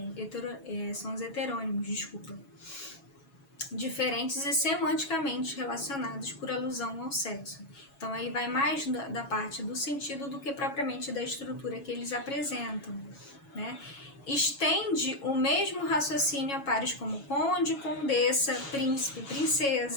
heterônimos, desculpa. Diferentes e semanticamente relacionados por alusão ao sexo. Então aí vai mais da parte do sentido do que propriamente da estrutura que eles apresentam, né? Estende o mesmo raciocínio a pares como conde, condessa, príncipe,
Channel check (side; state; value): right; late; 7.2 ms